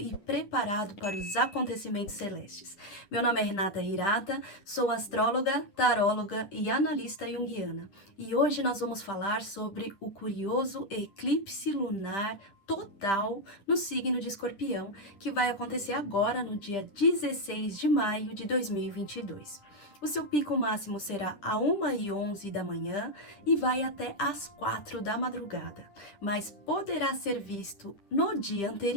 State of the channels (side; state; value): right; late; 9.9 ms